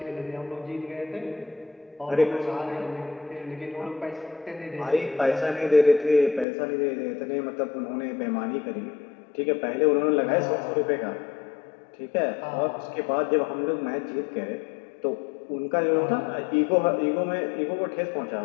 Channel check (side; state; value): right; drops out; at 6.5 s